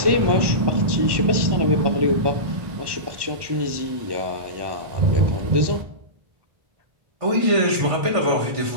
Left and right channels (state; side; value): late; left; 1.1 ms